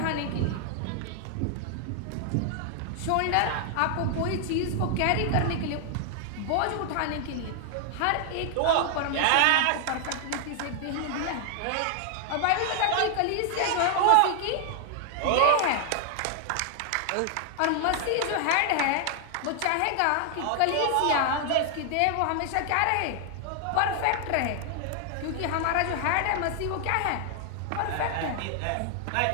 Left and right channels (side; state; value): both; different; correlation 0.00